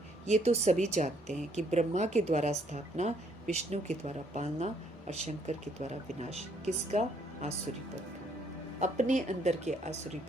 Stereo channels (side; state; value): both; normal; correlation 0.68